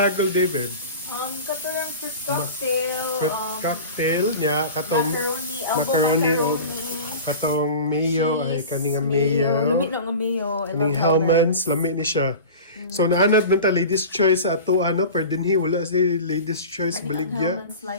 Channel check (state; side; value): inverted; both; correlation -0.35